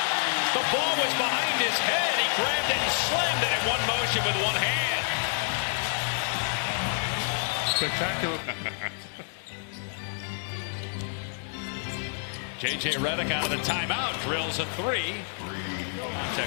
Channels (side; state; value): right; silent; digital silence